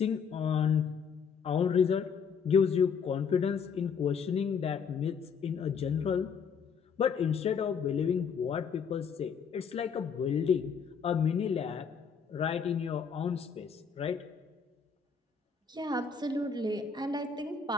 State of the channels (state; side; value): quieter; right; 6.4 dB